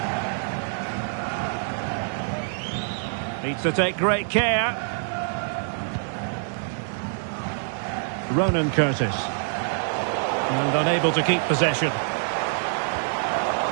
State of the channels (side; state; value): left; silent; digital silence